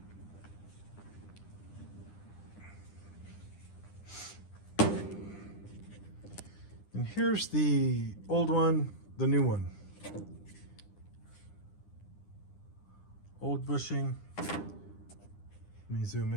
And here's the old one, the new one. Old bushing. Let me zoom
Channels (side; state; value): right; late; 9.9 ms